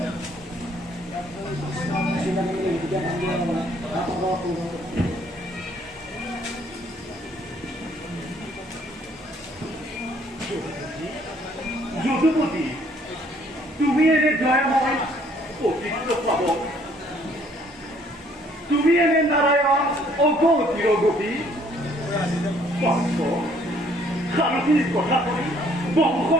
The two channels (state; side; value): normal; both; correlation 0.62